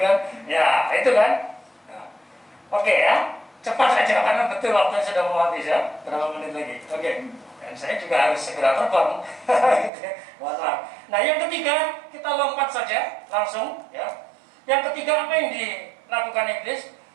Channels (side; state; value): left; drops out; at 9.9 s